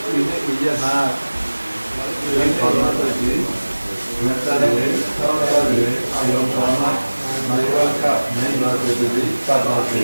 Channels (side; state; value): both; inverted; correlation -1.00